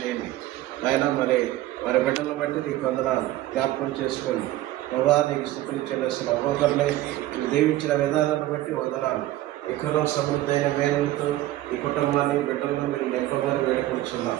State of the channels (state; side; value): quieter; left; 15.4 dB